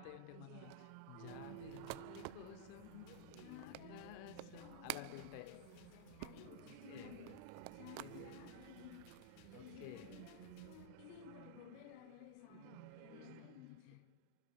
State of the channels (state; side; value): different; both; correlation -0.02